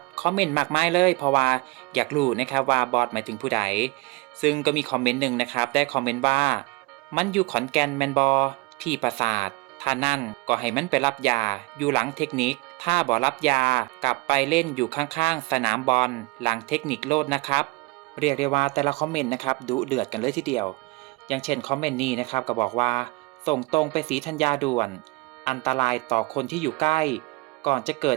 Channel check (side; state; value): left; quieter; 24.5 dB